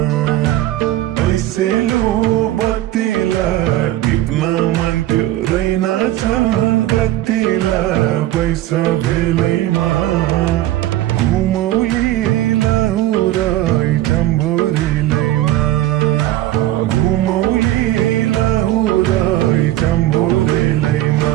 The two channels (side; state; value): left; quieter; 14.7 dB